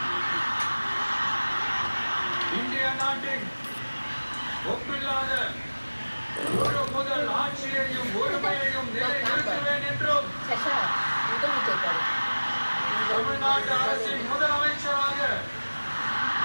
இந்திய நாட்டின் ஒப்பில்லாத ஒரு முதல் ஆட்சியையும் ஒருமையையும் நிலைநிறுத்துவேன் என்றும் தமிழ்நாட்டு அரசின் முதலமைச்சராக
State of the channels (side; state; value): both; inverted; correlation -1.00